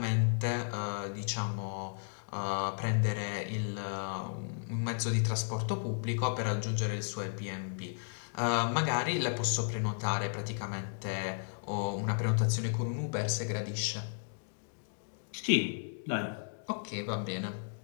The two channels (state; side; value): silent; right; digital silence